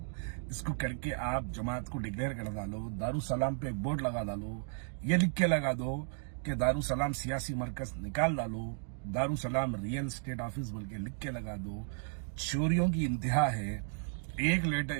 इसको करके आप जमात को डिक्लेयर कर डालो, दारुसलाम पे एक बोर्ड लगा डालो, ये लिख के लगा दो कि दारुसलाम सियासी मरकज निकाल डालो, दारुसलाम रियल स्टेट ऑफिस बोल के लिख के लगा दो। चोरियों की इंतहा है।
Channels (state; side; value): silent; left; 55 dB below the other